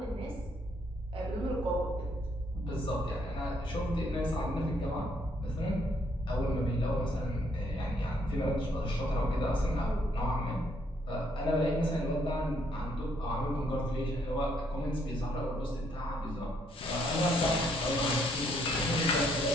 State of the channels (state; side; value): normal; both; correlation 0.70